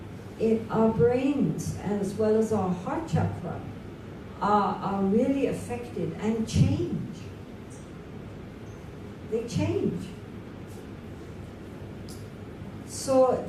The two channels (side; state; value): both; identical; correlation 1.00